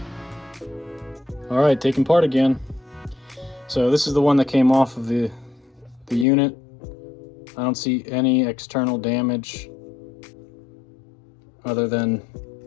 All right, taking part again. So this is the one that came off of the unit. I don't see any external damage other than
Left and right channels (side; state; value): right; drops out; at 6.2 s